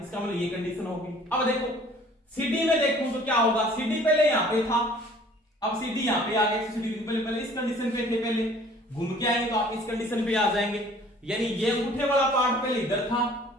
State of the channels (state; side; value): normal; both; correlation 0.53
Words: इसका मतलब ये कंडीशन होगी। अब देखो CD में देखूं तो क्या होगा, CD पहले यहां पे था, अब CD यहां पे आ गया 180 डिग्री, पहले इस कंडीशन पे थे, पहले घूम के आएंगे तो आप इस कंडीशन पे आ जाएंगे, यानी ये अंगूठे वाला पार्ट पहले इधर था,